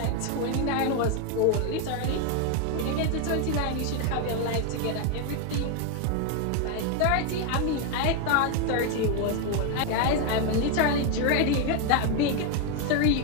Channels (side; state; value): both; different; correlation 0.01